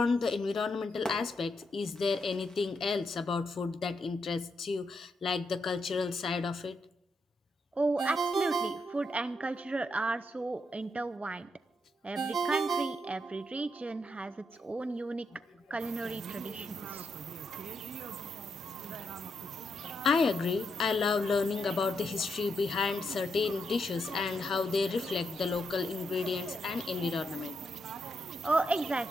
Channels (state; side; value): normal; both; correlation 0.81